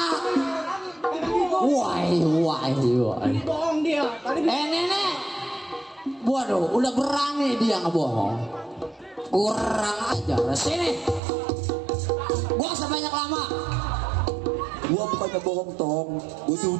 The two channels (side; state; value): left; drops out; at 11.2 s